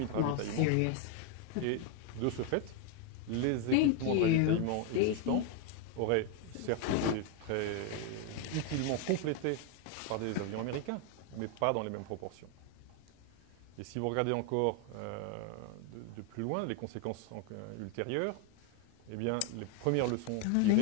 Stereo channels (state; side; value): different; both; correlation 0.01